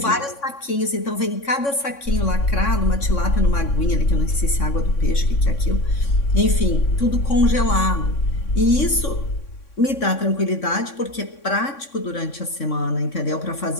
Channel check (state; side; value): late; right; 3.6 ms